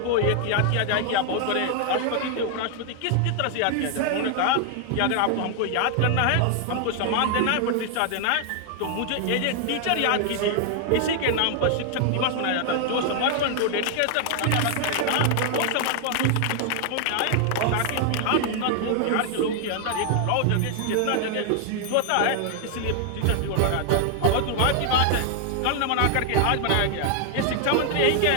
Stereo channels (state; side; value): different; both; correlation 0.00